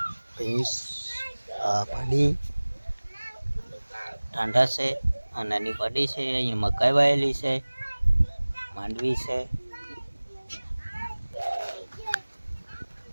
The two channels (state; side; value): inverted; both; correlation -1.00